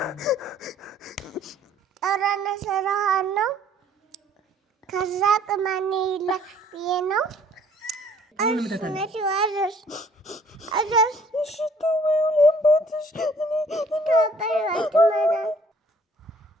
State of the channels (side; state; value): both; normal; correlation 0.58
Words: ጠራነ ሰራሃን ነው ከዛ ቅማኔ ይላል ብዬ ነው አስነሽ ዋዘሽ አዘሽ ሽቶ ወይም ቦትሽ